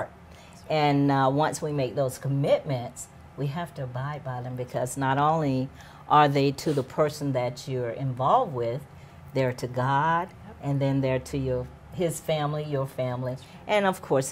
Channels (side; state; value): both; identical; correlation 1.00